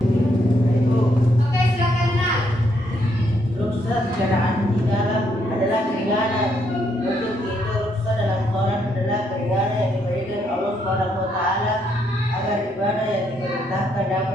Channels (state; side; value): normal; both; correlation 0.74